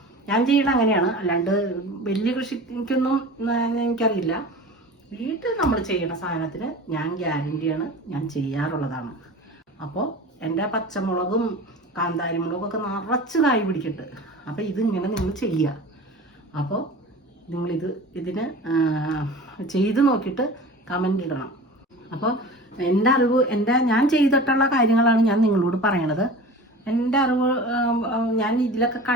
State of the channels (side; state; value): both; normal; correlation 0.37